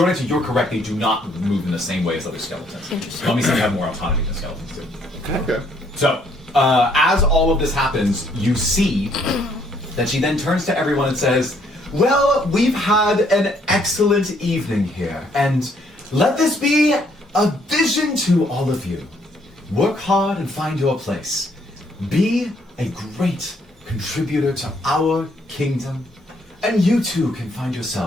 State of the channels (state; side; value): normal; both; correlation 0.67